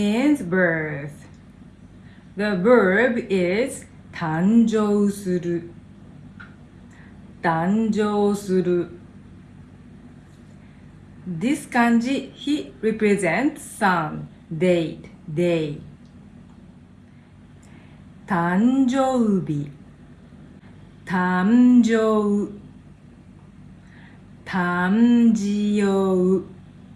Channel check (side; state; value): both; identical; correlation 1.00